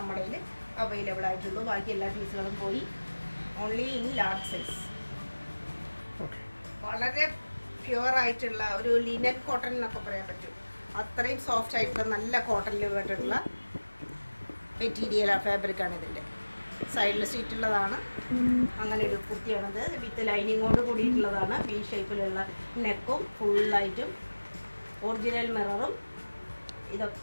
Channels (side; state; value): both; inverted; correlation -1.00